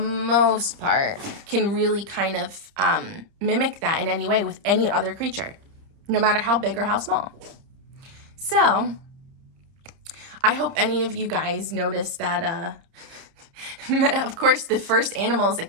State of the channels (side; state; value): left; late; 30 ms